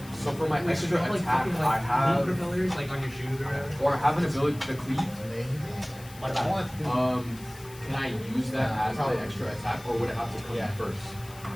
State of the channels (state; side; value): noise; left; hiss, 20 dB below the sound